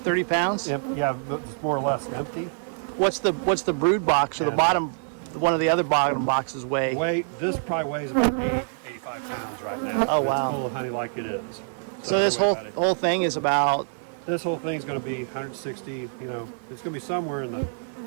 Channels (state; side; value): silent; left; digital silence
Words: pounds. Yeah, it's more or less empty. What's the brood box or the bottom? One of the other bottom boxes weigh? This probably weighs about 85 pounds right now. Oh wow! It's full of honey like it is. So this whole thing is about. This whole thing is going to be 160. You know, it's going to be somewhere in the